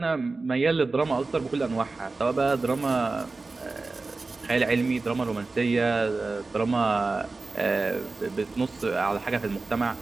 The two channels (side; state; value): left; quieter; 3.7 dB